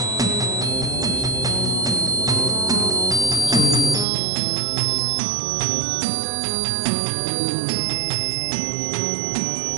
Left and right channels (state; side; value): drops out; left; at 4.0 s